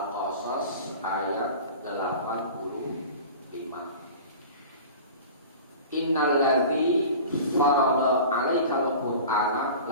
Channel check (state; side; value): inverted; both; correlation -0.38